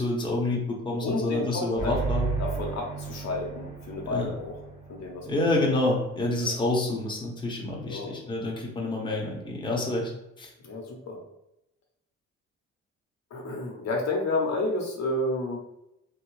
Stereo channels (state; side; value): normal; both; correlation 0.36